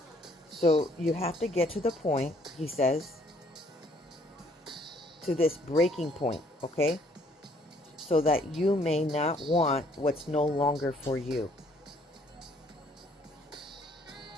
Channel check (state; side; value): normal; both; correlation 0.63